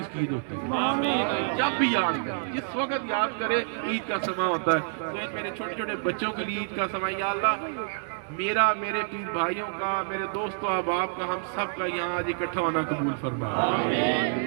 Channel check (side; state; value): left; silent; 60 dB below the other